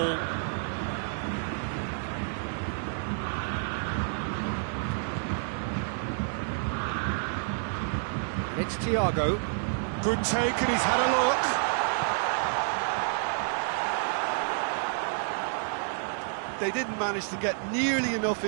It's Thiago. Good take and he's had a look. They didn't manage to get nearly enough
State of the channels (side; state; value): left; silent; digital silence